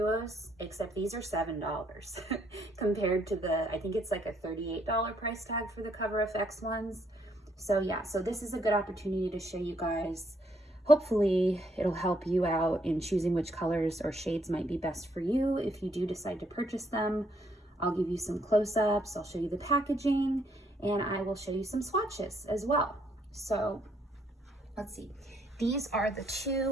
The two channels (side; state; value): both; normal; correlation 0.71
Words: except these are $7 compared to the, I think it's like a $38 price tag for the Cover FX ones. So yeah, so this is a good opportunity to show you guys. Hopefully it'll help you out in choosing which colors or shades might be best for you if you do decide to purchase them. I'll give you some close-ups, I'll show you the packaging, and I will show you some swatches as well. So let's see. These are the